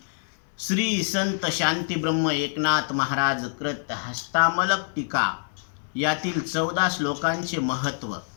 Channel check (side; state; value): right; silent; digital silence